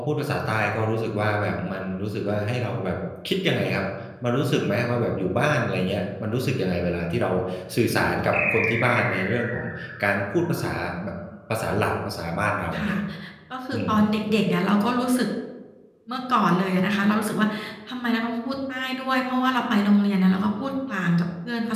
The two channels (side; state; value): both; identical; correlation 1.00